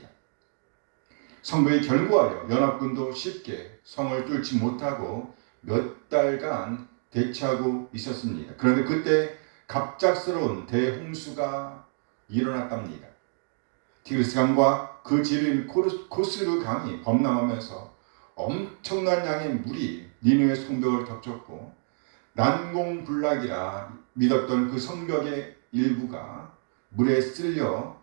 성벽에 결부하여 연합군도 쉽게 성을 뚫지 못하고 몇 달간 대치하고 있었습니다. 그런데 그때 갑작스러운 대홍수가 일어났답니다. 티그리스 강과 그 지류인 코스르 강이 범람하면서 엄청난 양의 물이 니느웨 성벽을 덮쳤고 난공불락이라 믿었던 그 성벽의 일부가 물에 쓸려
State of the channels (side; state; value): left; silent; 60 dB below the other